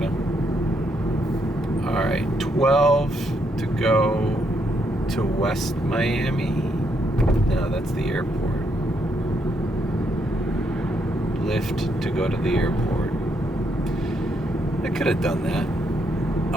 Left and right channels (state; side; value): normal; both; correlation 0.76